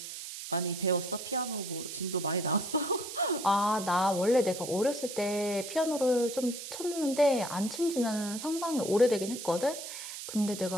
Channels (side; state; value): right; noise; hiss, 9 dB below the sound